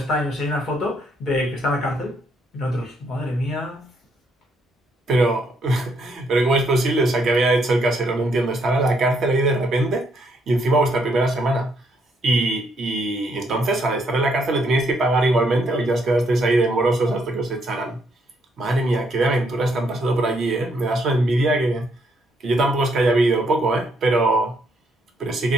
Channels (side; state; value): both; normal; correlation 0.73